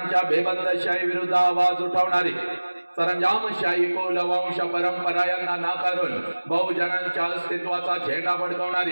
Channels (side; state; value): both; inverted; correlation -1.00